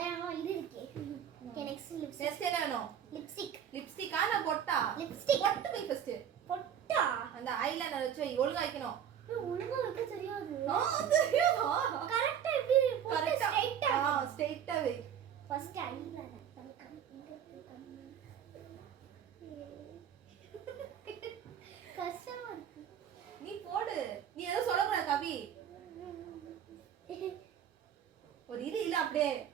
இது இருக்கே. Okay, next lipstick. நெக்ஸ்ட் என்ன வேணும்? லிப்ஸ்டிக். லிப்ஸ்டிக்கா நான் பொட்டா? லிப்ஸ்டிக். பொட்டு போய் ஃபர்ஸ்ட். பொட்டா? அந்த ஐலைனர் வச்சு வை, ஒழுங்கா வைக்கணும். ஒழுங்கா வைக்க தெரியாது. தெரியுமா? கரெக்ட்டா எப்படி பொட்டு கரெக்ட்டா. ஸ்ட்ரைட்டா. ஸ்ட்ரைட்டா வை. ஃபர்ஸ்ட் ஐலைனர் கண்ணு இங்க இருக்கு கண்ணு. கஷ்டமா இருக்கு. நீ போடு. நீ ஏதோ சொல்லக்கூடாது கவி. ஒரு இது இல்ல அப்படியே.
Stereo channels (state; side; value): quieter; left; 8.9 dB